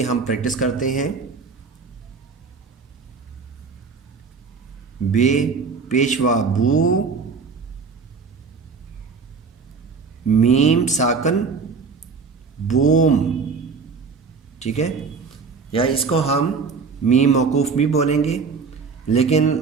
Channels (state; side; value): quieter; left; 5.1 dB